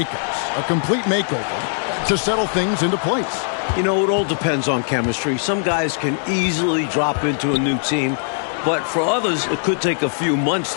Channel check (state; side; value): silent; right; digital silence